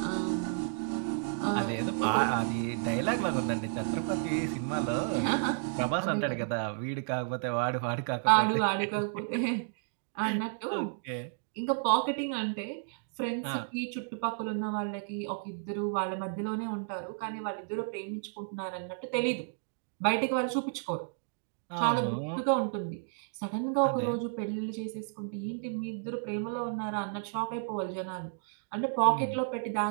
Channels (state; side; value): silent; left; digital silence